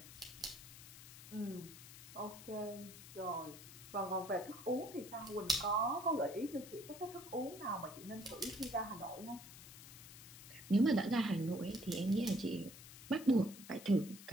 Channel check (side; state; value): left; noise; hiss, 15 dB below the sound